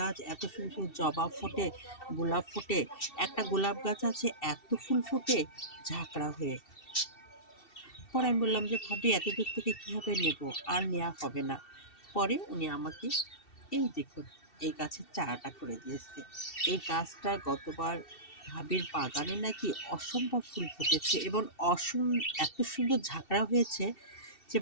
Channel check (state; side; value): late; right; 2.7 ms